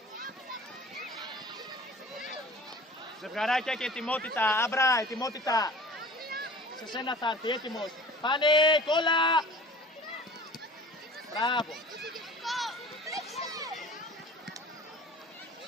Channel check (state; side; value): normal; both; correlation 0.42